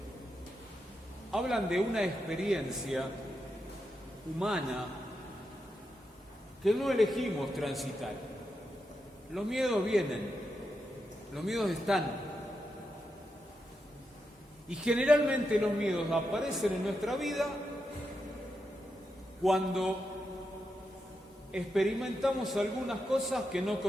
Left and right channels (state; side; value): normal; both; correlation 0.86